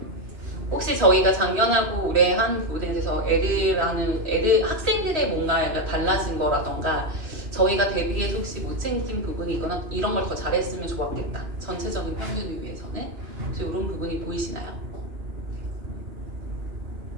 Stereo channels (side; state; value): left; late; 3.1 ms